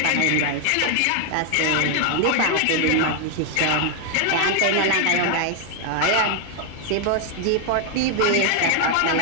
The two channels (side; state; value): both; different; correlation 0.00